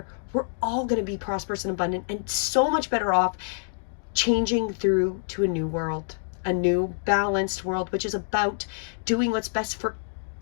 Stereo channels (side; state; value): right; silent; digital silence